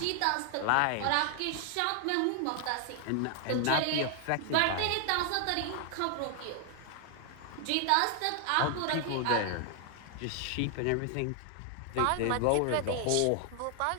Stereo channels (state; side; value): different; both; correlation 0.00